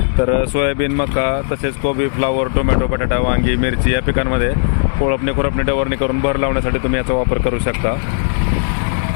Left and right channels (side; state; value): right; silent; digital silence